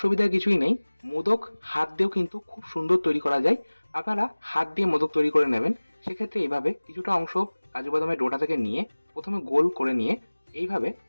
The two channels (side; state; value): both; inverted; correlation -1.00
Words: কিছুই নেই। মোদক হাত দিয়েও কিন্তু খুব সুন্দর তৈরি করা যায়। আপনারা হাত দিয়ে মোদক তৈরি করে নেবেন। সেক্ষেত্রে এইভাবে কিছুটা অংশ কাজু বাদামের ডোটা থেকে নিয়ে প্রথমে গোল করে নিয়ে এইভাবে